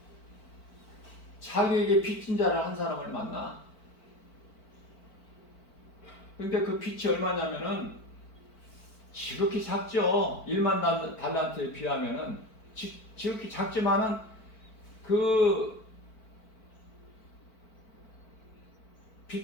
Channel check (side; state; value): right; late; 4.5 ms